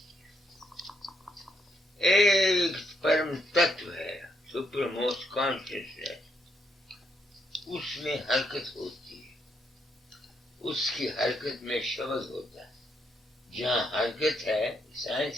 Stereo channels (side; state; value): both; normal; correlation 0.76